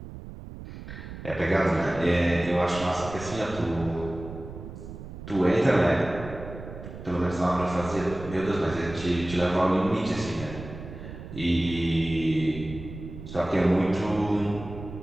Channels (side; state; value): right; noise; rumble, 12 dB below the sound